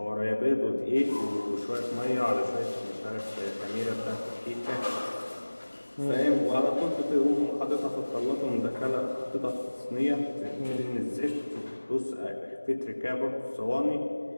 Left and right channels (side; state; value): both; inverted; correlation -1.00